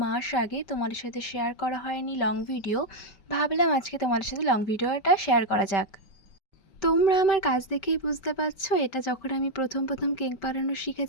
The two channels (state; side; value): late; right; 5.2 ms